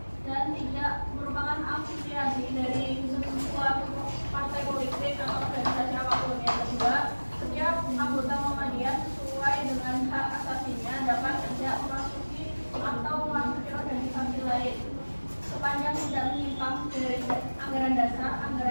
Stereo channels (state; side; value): inverted; both; correlation -1.00